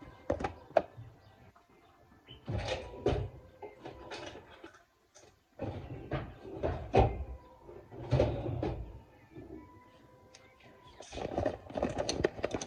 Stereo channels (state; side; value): identical; both; correlation 1.00